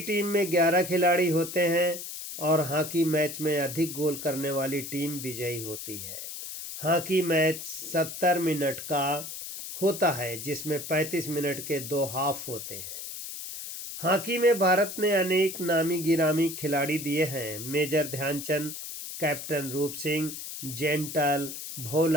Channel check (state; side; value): noise; left; hiss, 9 dB below the sound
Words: में 11 खिलाड़ी होते हैं और हॉकी मैच में अधिक गोल करने वाली टीम विजयी होती है। हॉकी मैच 70 मिनट का होता है, जिसमें 35 मिनट के 2 हाफ होते हैं। हॉकी में भारत ने अनेक नामी गिरामी खिलाड़ी दिए हैं। मेजर ध्यानचंद, कैप्टन रूप सिंह, जेंटल,